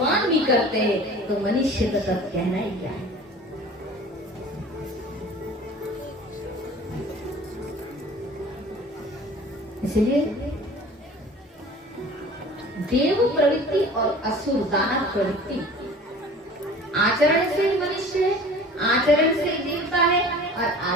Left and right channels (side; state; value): both; normal; correlation 0.44